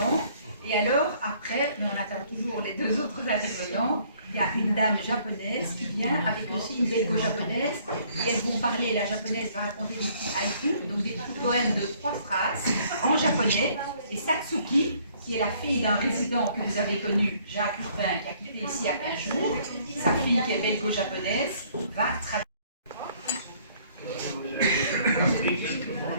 Et alors, après, mais on attend toujours les deux autres intervenants, il y a une dame japonaise qui vient avec aussi une belgo-japonaise, et elles vont parler, la japonaise va raconter des petits haïkus, donc des petits poèmes de 3 phrases en japonais, et Satsuki, qui est la fille d'un résident que vous avez connu, Jacques Urbain, qui a quitté ici il y a 15 jours, sa fille qui est belgo-japonaise, va traduire.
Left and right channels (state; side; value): inverted; both; correlation -0.61